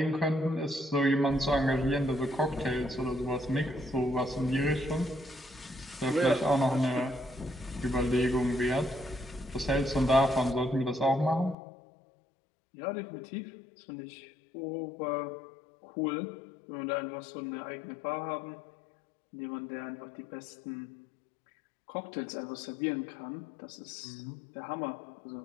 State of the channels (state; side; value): drops out; right; at 11.6 s